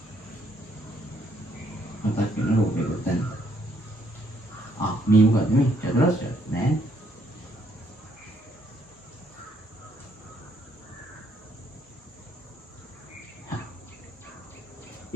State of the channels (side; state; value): both; normal; correlation 0.69